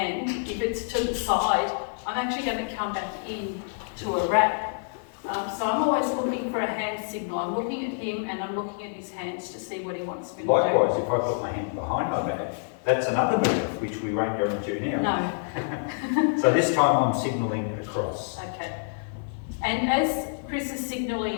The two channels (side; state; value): right; silent; 60 dB below the other